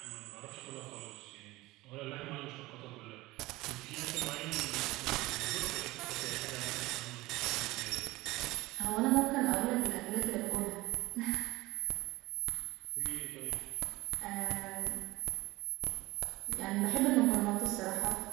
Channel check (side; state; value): left; quieter; 19.6 dB